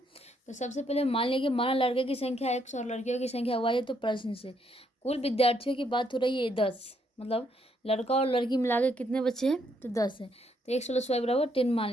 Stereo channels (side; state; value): both; normal; correlation 0.73